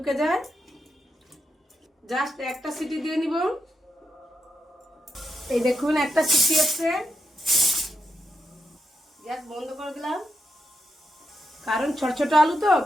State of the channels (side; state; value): both; normal; correlation 0.84